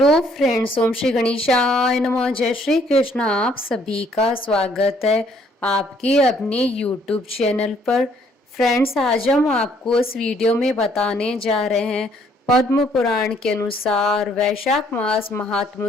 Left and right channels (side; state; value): both; normal; correlation 0.65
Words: friends, ओम श्री गणेशाय नमः। जय श्री कृष्ण। आप सभी का स्वागत है आपके अपने यूट्यूब चैनल पर। फ्रेंड्स, आज हम आपको इस वीडियो में बताने जा रहे हैं पद्म पुराण के अनुसार वैशाख मास